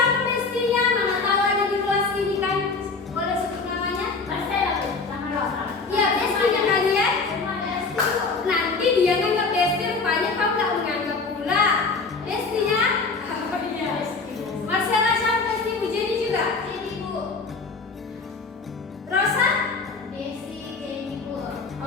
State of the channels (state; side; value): quieter; right; 4.3 dB